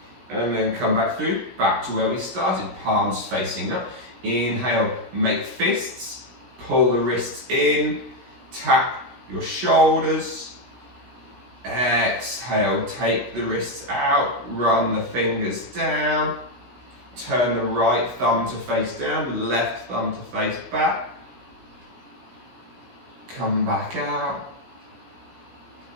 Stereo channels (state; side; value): late; left; 16 ms